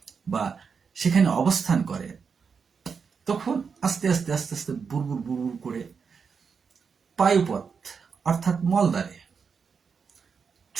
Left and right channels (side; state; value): left; quieter; 5.9 dB